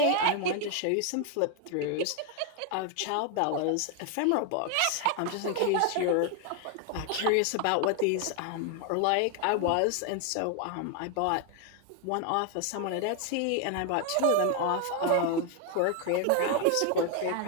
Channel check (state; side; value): different; both; correlation 0.01